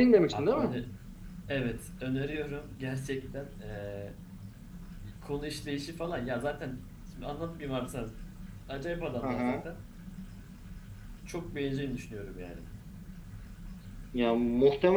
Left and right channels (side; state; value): both; identical; correlation 1.00